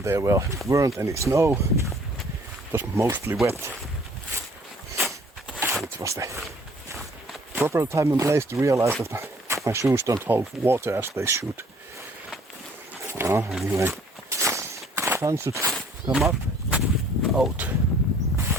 there weren't any snow, it was mostly wet. It was the proper time and place to realize that my shoes don't hold water as they should. Anyway, sun should come up,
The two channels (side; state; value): both; normal; correlation 0.57